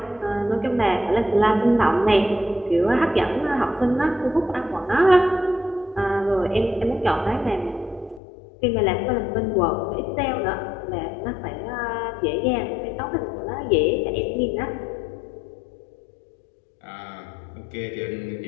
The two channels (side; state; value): right; drops out; at 8.2 s